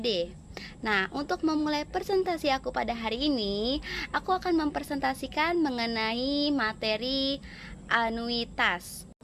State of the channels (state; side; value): identical; both; correlation 1.00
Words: Nah, untuk memulai presentasi aku pada hari ini, aku akan mempresentasikan mengenai materi anuitas.